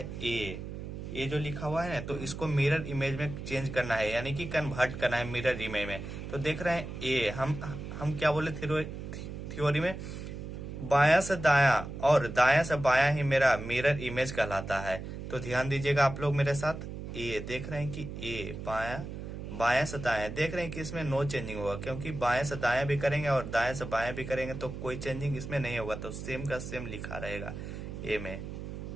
ए जो लिखा हुआ है ना, तो इसको मिरर इमेज में चेंज करना है, यानी कि कन्वर्ट करना है मिरर इमेज में। तो देख रहे हैं ए, हम क्या बोले थ्योरी में, बायां से दायां और दायां से बायां ही मेरा मिरर इमेज कहलाता है। तो ध्यान दीजिएगा आप लोग मेरे साथ। ए देख रहे हैं कि ए बायां, बायां से दायां देख रहे हैं कि इसमें नो चेंजिंग होगा, क्योंकि बाएं से दायां भी करेंगे और दाएं से बायां भी करेंगे तो कोई चेंजिंग इसमें नहीं होगा, तो सेम का सेम लिखा रहेगा ए में।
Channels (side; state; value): right; noise; hum, 8 dB below the sound